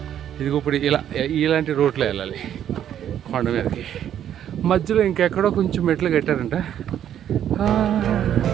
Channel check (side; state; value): left; quieter; 10.2 dB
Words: ఇది ఇప్పుడు ఇలాంటి రోడ్లో వెళ్ళాలి కొండ మీదకి. మధ్యలో ఇంకెక్కడో కొంచెం మెట్లు కట్టారంట.